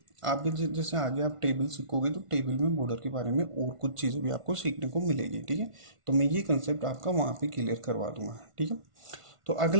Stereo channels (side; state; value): left; late; 1.5 ms